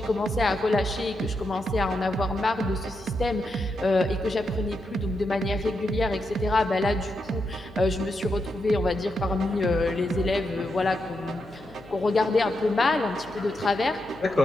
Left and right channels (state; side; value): noise; left; hum, 21 dB below the sound